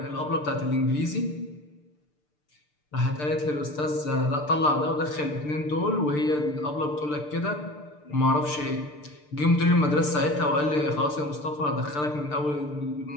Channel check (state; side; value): late; right; 6.7 ms